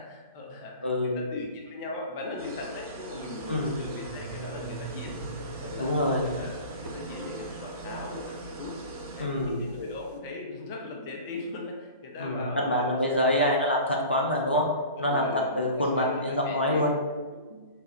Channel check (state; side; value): inverted; both; correlation -0.37